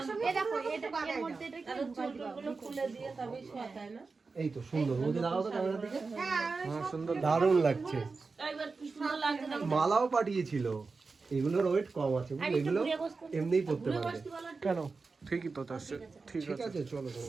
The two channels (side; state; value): left; quieter; 4.3 dB